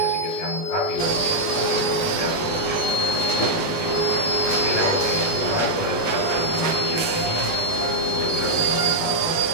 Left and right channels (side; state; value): right; late; 18 ms